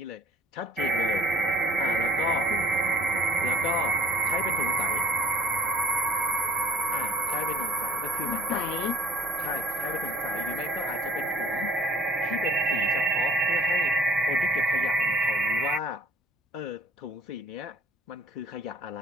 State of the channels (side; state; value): both; normal; correlation 0.55